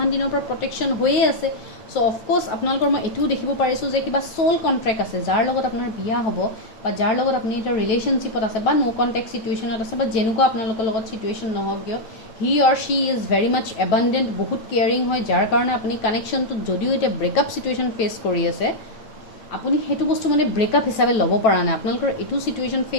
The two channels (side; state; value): right; late; 9.3 ms